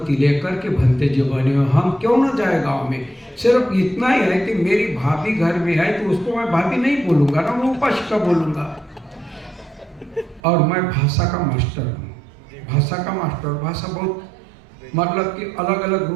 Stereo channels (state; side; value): drops out; left; at 10.4 s